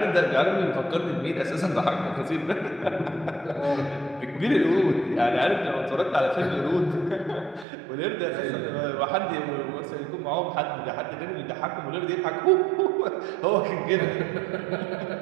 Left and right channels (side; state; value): left; drops out; at 7.7 s